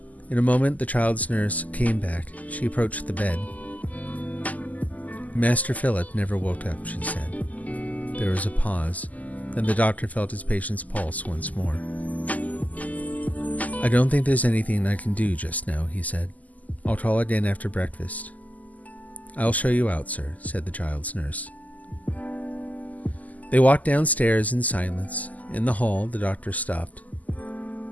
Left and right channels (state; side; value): late; right; 0.077 ms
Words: In a moment the child's nurse came back. She approached the bed. "Master Philip never woke up," she said. There was a pause. Then the doctor felt his patient's pulse once more. "I don't think there's anything I can do just now," he said. "I'll call again after breakfast." "I'll show you out, sir," said the child's nurse. They walked downstairs in silence. In the hall, the doctor stopped.